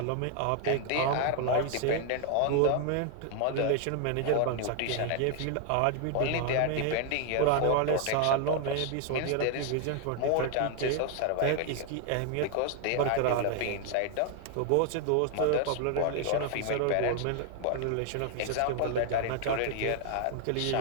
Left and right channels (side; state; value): both; different; correlation 0.00